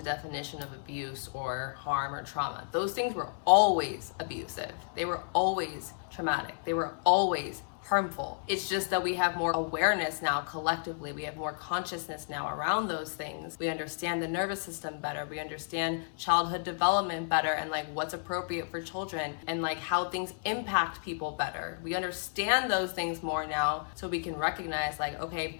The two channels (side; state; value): right; silent; 56 dB below the other